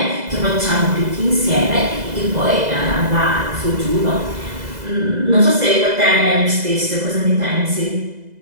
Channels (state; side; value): late; left; 2.0 ms